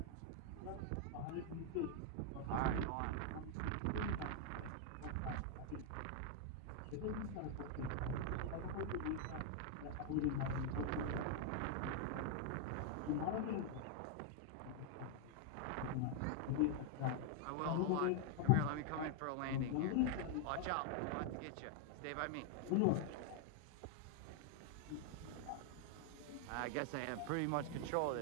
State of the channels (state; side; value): different; both; correlation 0.00